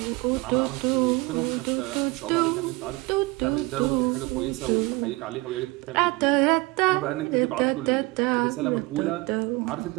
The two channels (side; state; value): left; quieter; 23.1 dB